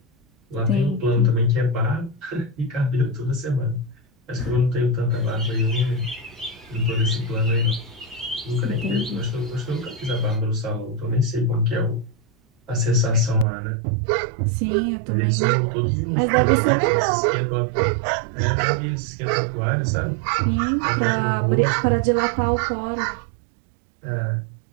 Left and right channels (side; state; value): left; drops out; at 13.5 s